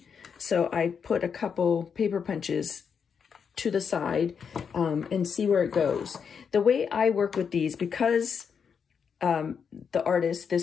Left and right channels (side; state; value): right; quieter; 6.7 dB